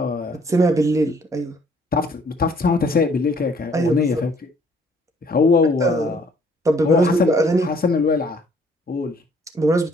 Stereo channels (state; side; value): normal; both; correlation 0.61